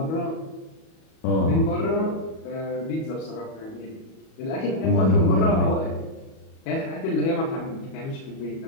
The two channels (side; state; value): right; late; 37 ms